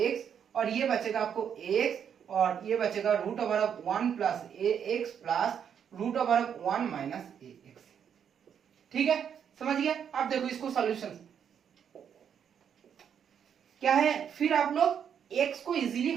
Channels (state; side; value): quieter; left; 8.1 dB